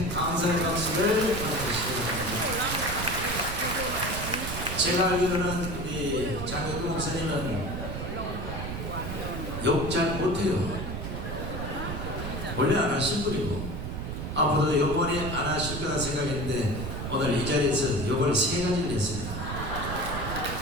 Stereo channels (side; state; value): right; noise; rumble, 5 dB below the sound